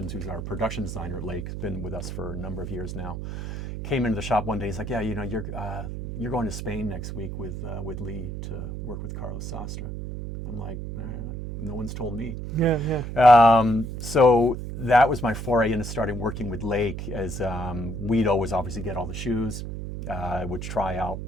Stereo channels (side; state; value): right; noise; hum, 6 dB below the sound